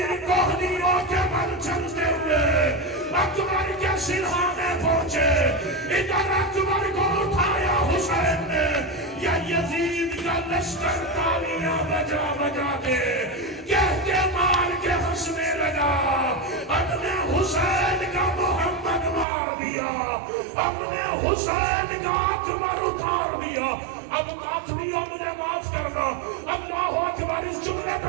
کوہنیوں کے بل چلتے ہوئے اکبر کے سرحانے پہنچے، ادھر اکبر کو اٹھایا حسین نے، یا یزید کا لشکر تالیاں بجا بجا کے کہہ کے مار کے ہنسنے لگا۔ اپنے حسین کا محمد مار دیا، اپنے حسین کا اکبر اتار دیا۔ اب ماتمیا مجھے معاف کرنا، اللہ اکبر، اس جملے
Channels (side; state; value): left; drops out; at 19.2 s